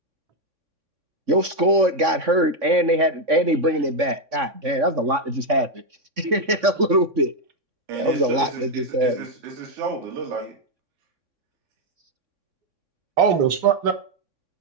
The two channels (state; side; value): late; left; 3.6 ms